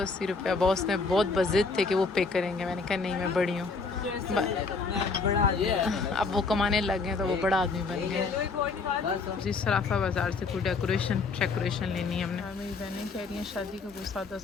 रुपया। बॉस ने बहुत बजिद थे कि वो पे करेंगे। मैंने कहा नहीं मैं बड़ी हूँ। अब वो कमाने लग गए तो वो बड़ा आदमी बन गए। जी सराफा बाज़ार से कोई डेकोरेशन लेनी है हमने। मेरी बहनें कह रही हैं शादी का कोई सादा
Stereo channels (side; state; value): right; quieter; 4.3 dB